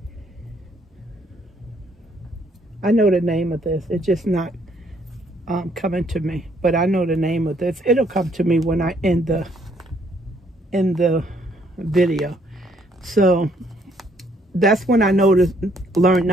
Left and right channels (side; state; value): both; normal; correlation 0.67